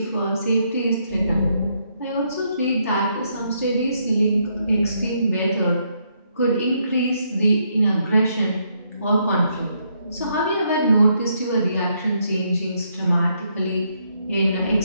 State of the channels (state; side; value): inverted; both; correlation -0.75